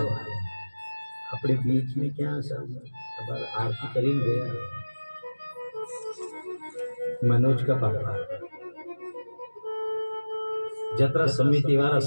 अपने बीच में क्या सब आरती करीन गया मनोज का पापा, जत्रा समिति वाला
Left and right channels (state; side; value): inverted; both; correlation -1.00